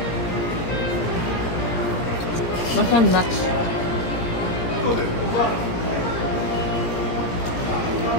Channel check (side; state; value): right; late; 17 ms